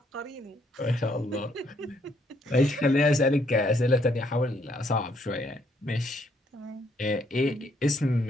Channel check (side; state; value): both; normal; correlation 0.70